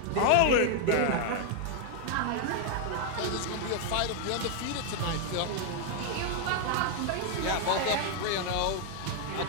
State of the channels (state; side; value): different; both; correlation 0.00